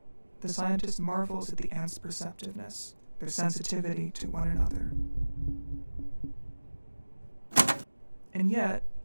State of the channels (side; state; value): both; inverted; correlation -1.00